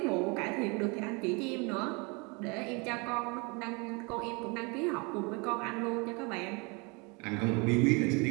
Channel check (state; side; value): quieter; left; 29.9 dB